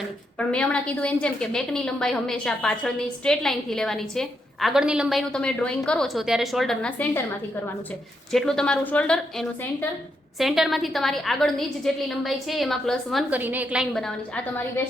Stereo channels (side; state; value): both; normal; correlation 0.80